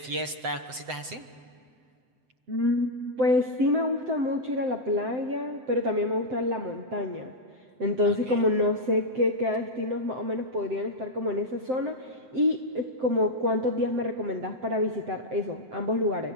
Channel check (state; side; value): late; left; 7.8 ms